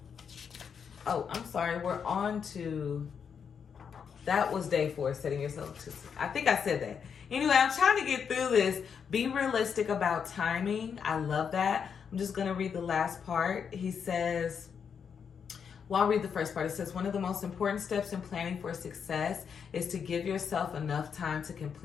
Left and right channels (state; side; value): quieter; right; 6.9 dB